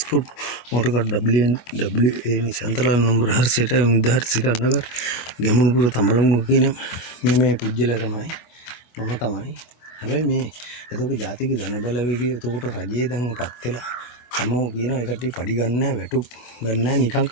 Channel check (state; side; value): late; right; 24 ms